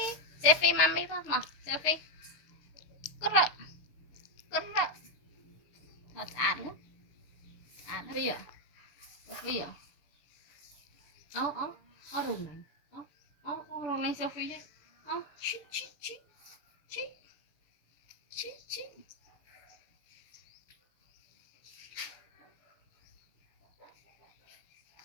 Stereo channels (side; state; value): right; late; 6.9 ms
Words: Sophie mami pas mah Sophie gerak gerak thật ản á bây giờ Sophie à ó rồi này ó rồi này Sophie ấy chi chi chi chi chi chi